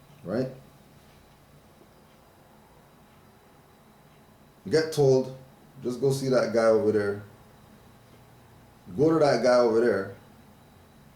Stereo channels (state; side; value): identical; both; correlation 1.00